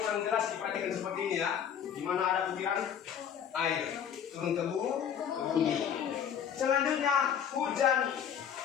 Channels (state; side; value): quieter; right; 8.5 dB